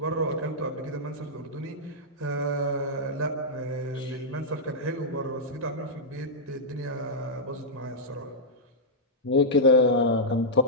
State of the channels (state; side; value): normal; both; correlation -0.09